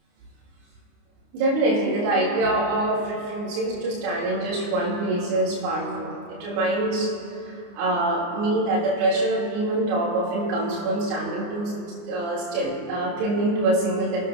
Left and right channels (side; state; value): left; late; 29 ms